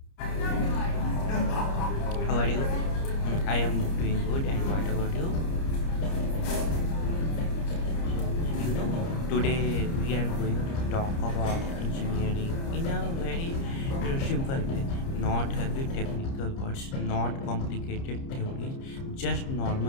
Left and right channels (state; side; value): late; right; 30 ms